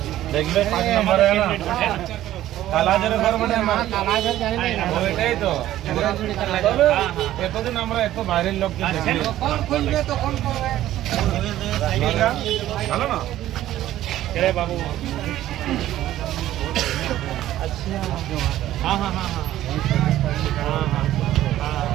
দেখবে 5 নম্বরে না কালাজারের ঘর মানে কালাজার জানি না ওইটাই তো এতদিন আমরা এত বাইরের লোককে দেখি কোন খুলবে তো কোন করবে ভালো না রে বাবু আচ্ছা हां हां हां हां हां हां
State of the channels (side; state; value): left; quieter; 13.6 dB